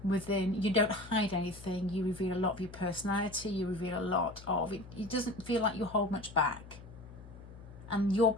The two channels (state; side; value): noise; left; hum, 18 dB below the sound